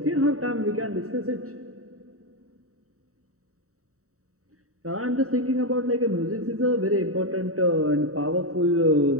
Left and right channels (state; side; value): late; left; 0.64 ms